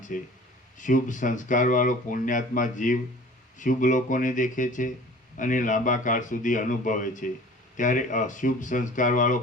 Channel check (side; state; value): both; normal; correlation 0.45